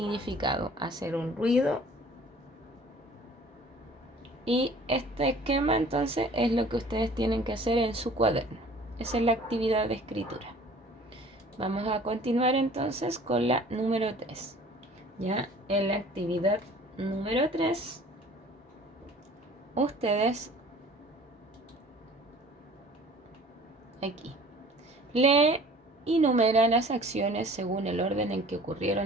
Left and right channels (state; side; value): normal; both; correlation 0.48